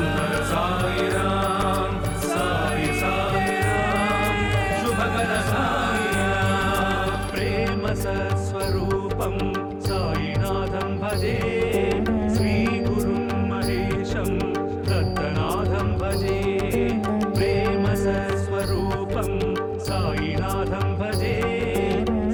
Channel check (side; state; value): both; identical; correlation 1.00